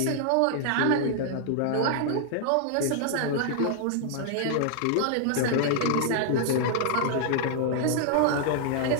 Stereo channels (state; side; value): different; both; correlation -0.01